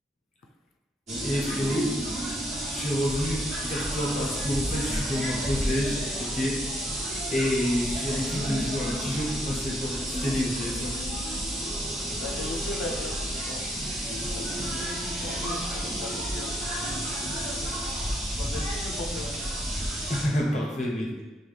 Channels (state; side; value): normal; both; correlation 0.72